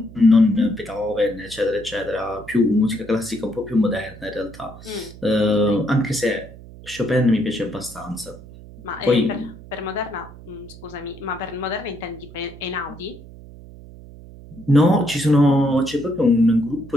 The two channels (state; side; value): noise; right; hum, 18 dB below the sound